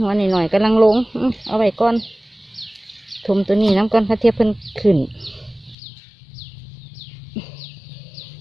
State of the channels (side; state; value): right; drops out; at 5.8 s